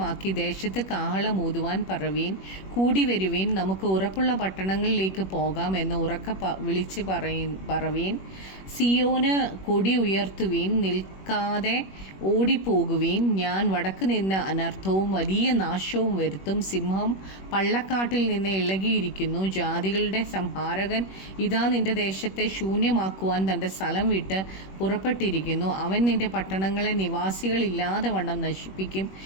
ദേശത്ത് കാഹളം ഊതുവാൻ പറവീൻ, കൂടി വരുവീൻ, നമുക്ക് ഉറപ്പുള്ള പട്ടണങ്ങളിലേക്ക് പോകാം എന്ന് ഉറക്ക വിളിച്ച് പറവീൻ. സിയോന് കൊടി ഉയർത്തുവീൻ, നിൽക്കാതെ ഓടിപ്പോകുവീൻ. ഞാൻ വടക്ക് നിന്ന് അനർത്ഥവും വലിയ നാശവും വരുത്തും. സിംഹം പള്ളക്കാട്ടിൽ നിന്ന് ഇളകിയിരിക്കുന്നു. ജാതികളുടെ സംഹാരകൻ ഇതാ നിന്റെ ദേശത്തെ ശൂന്യമാക്കുവാൻ തൻ്റെ സ്ഥലം വിട്ട് പുറപ്പെട്ടിരിക്കുന്നു. അവൻ നിന്റെ പട്ടണങ്ങളെ നിവാസികളില്ലാതെ വണ്ണം നശിപ്പിക്കും.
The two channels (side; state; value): right; late; 21 ms